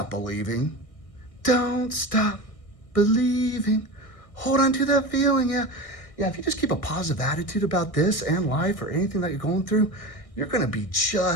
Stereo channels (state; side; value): late; right; 1.6 ms